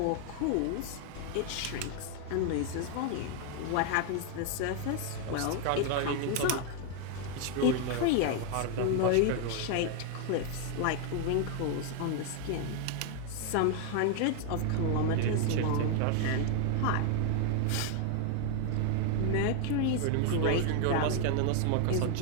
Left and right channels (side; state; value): both; different; correlation 0.00